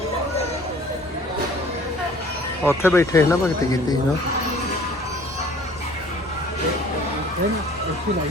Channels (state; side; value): normal; both; correlation 0.51